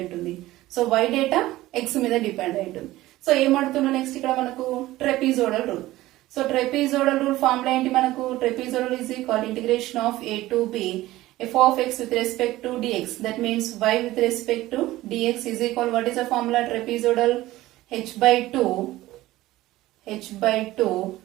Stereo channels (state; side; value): quieter; left; 16.8 dB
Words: ఉంటుంది. సో వై డేటా ఎక్స్ మీద డిపెండ్ అయి ఉంటుంది. సో ఏమడుతుందో నెక్స్ట్ ఇక్కడ మనకు trapezoidal rule. So trapezoidal rule formula ఏంటి? మనకు trapezoidal is equal integration of a to b f of x with respect to dx. That means y with respect to dx is equal, what is the formula? Trapezoidal h by 2.